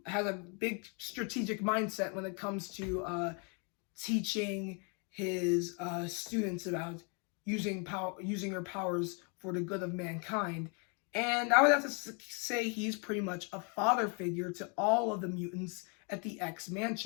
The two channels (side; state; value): right; quieter; 35.9 dB